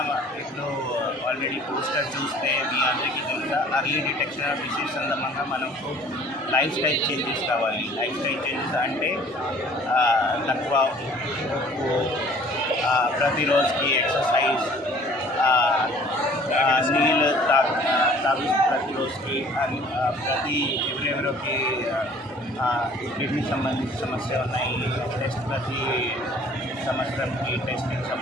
ఇప్పుడు ఆల్రెడీ పోస్టర్ చూస్తే మీ అందరికీ తెలుసా, ఎర్లీ డిటెక్షన్ ఆఫ్ డిసీజ్ సందర్భంగా మనకు లైఫ్ స్టైల్ చేంజెస్ కావాలి. లైఫ్ స్టైల్ చేంజెస్ అంటే తక్కువ ఉప్పు, ప్రతిరోజుకి ఎక్సర్సైజ్, నీళ్ళు తాగు ప్రతిరోజుకి, ఎవరెవరికి కిడ్నీ సంబంధించిన సమస్య ఉన్నాయి, టెస్ట్ ప్రతి సంవత్సరంకి టెస్ట్కి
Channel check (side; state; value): both; normal; correlation 0.52